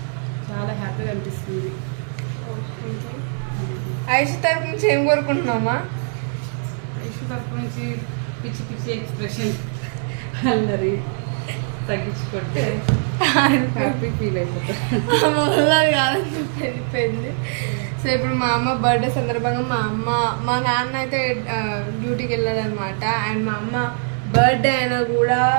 చాలా హ్యాపీగా అనిపిస్తుంది. ఐషు తరపు నుంచి ఏం కోరుకుంటున్నామా? ఐషు తరపు నుంచి పిచ్చి పిచ్చి ఎక్స్ప్రెషన్ అల్లరి తగ్గించుకుంటే హ్యాపీ ఫీల్ అయిపోయింది. సో ఇప్పుడు మా అమ్మ బర్త్డే సందర్భంగా మా నాన్న అయితే డ్యూటీకి వెళ్ళాడు అనమాట. అండ్ మా అమ్మ బర్త్డే అయినా కూడా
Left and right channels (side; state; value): left; silent; 57 dB below the other